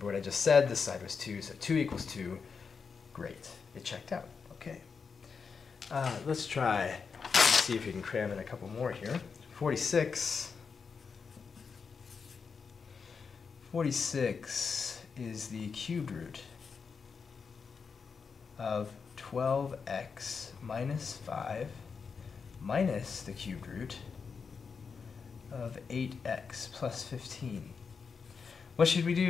what I just said. This side was 2, so 2 equals 2. Great. It checked out. Okay. Let's try and see if you can cram in a couple more here. 46. 46 is the cubed root of 12x minus 5 minus the cubed root of 8x plus 15. What should we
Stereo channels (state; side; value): quieter; right; 5.6 dB